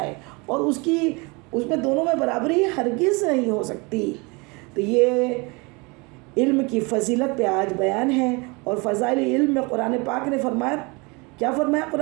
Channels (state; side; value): quieter; left; 28.1 dB